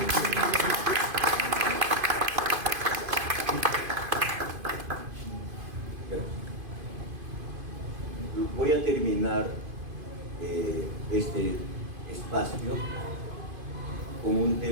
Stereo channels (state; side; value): late; left; 2.5 ms